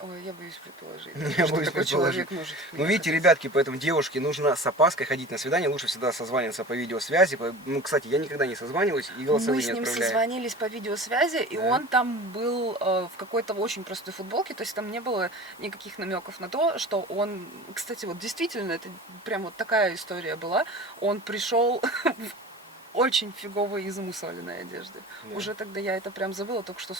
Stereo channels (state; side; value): normal; both; correlation 0.37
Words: Ой, я боюсь предположить. Я что боюсь такой предположить. человек может. Ну, видите, ребятки, поэтому девушке нужно с опаской ходить на свидание, лучше всегда созваниваться по видеосвязи. Ну, кстати, я никогда не созваниваюсь и голосовые Мы с не ним отправляю. созвонились по видеосвязи, и Да. он там был в какой-то очень простой футболке, то есть там не было никаких намеков на то, что он, кстати, вот действительно, это прям вот такая история была, он пришел в очень фиговой и замусоленной одежде. Да. Уже тогда я это прям забыла, только что,